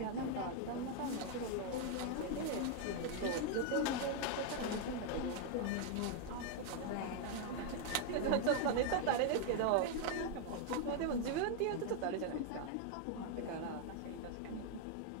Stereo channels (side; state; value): both; different; correlation 0.00